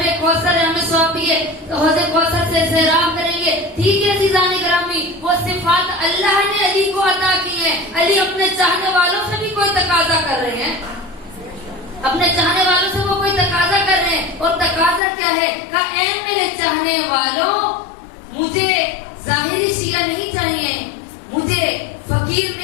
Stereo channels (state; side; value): drops out; right; at 15.0 s